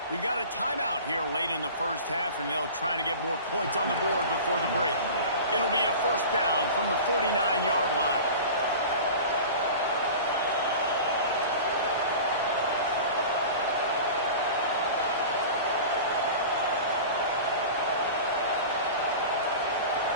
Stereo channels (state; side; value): inverted; both; correlation -0.36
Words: We've got a timeout here late in the first half, and they'll try to get more points on the board before the break. It'll be a first down from the 49-yard line.